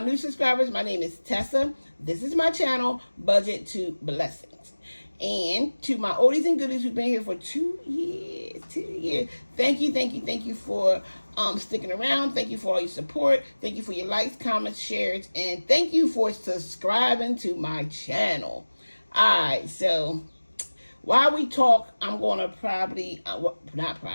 new subscribers. My name is Tessa. This is my channel, Budget to Blessings. And to my oldies and goodies who've been here for 2 years, thank you for sticking around. Thank you for all your support. Thank you for your likes, comments, shares, and thank you for subscribing to my channel. All right, so while we talk, I'm going to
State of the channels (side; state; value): both; inverted; correlation -1.00